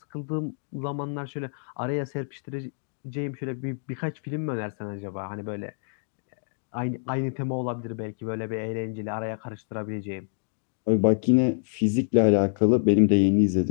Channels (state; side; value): silent; right; digital silence